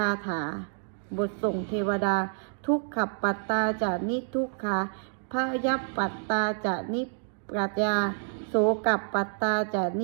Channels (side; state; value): left; silent; digital silence